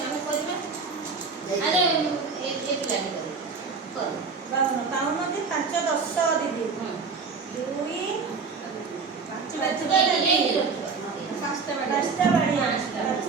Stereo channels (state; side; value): quieter; left; 4.9 dB